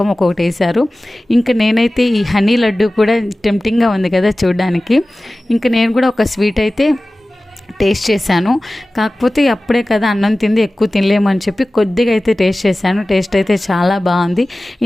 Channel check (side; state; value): both; normal; correlation 0.97